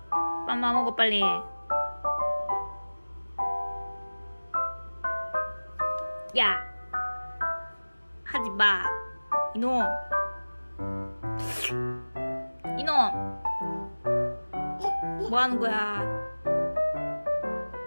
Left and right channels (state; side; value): inverted; both; correlation -1.00